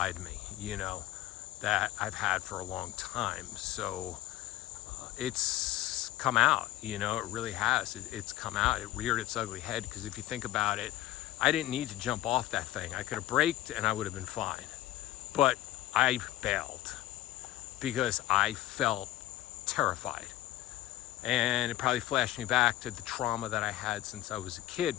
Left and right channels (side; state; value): right; quieter; 15.0 dB